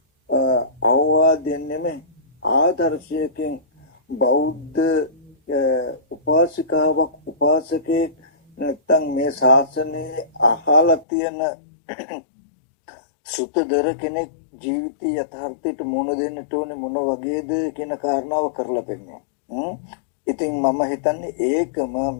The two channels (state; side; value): drops out; right; at 11.1 s